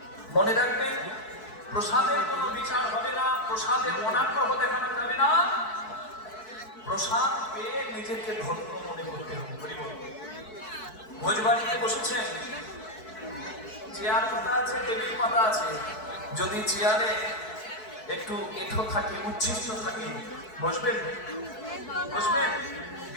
মনে রাখবেন, প্রসাদের কোনো বিচার হবে না, প্রসাদের অনাগ্রহ দেখানো যাবে না। প্রসাদ পেয়ে নিজেকে ধন্য মনে করতে হবে। ভোজবাড়িতে বসেছেন, চেয়ার পাতা আছে, টেবিল পাতা আছে। যদি চেয়ারে একটু এঁঠো থাকে, উচ্ছিষ্ট থাকে, বসবেন? বসবেন?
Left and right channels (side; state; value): right; late; 4.6 ms